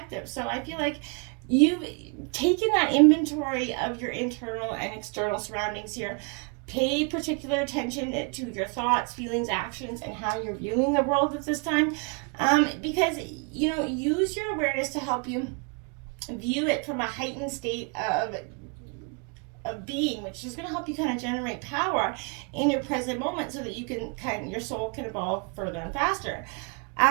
So I feel like you've taking that inventory of your internal and external surroundings here. Pay particular attention to your thoughts, feelings, actions, and how you're viewing the world at this time. Because, use your awareness to help you view it from a heightened state of being, which is going to help you kind of generate power in your present moment so that you can your soul can evolve further and faster.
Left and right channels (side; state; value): left; quieter; 35.3 dB